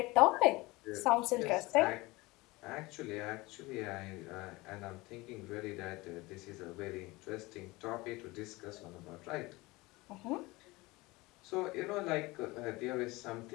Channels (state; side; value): quieter; right; 22.0 dB